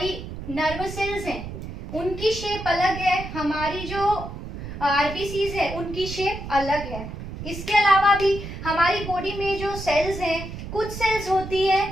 नर्व सेल्स हैं उनकी शेप अलग है, हमारी जो आरबीसीज है उनकी शेप अलग है। इसके अलावा भी हमारी बॉडी में जो सेल्स हैं, कुछ सेल्स होती है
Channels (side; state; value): right; noise; rumble, 9 dB below the sound